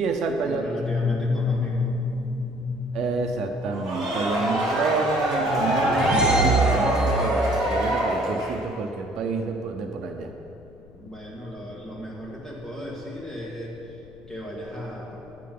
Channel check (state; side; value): noise; left; rumble, 22 dB below the sound